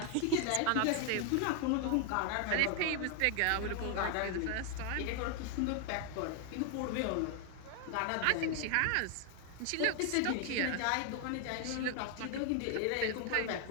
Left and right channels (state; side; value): different; both; correlation 0.00